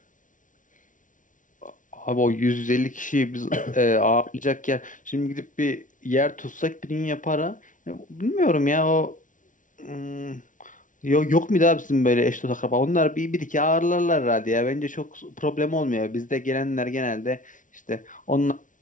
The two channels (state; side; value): late; right; 0.38 ms